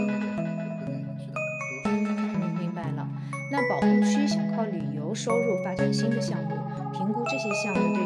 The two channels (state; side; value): identical; both; correlation 1.00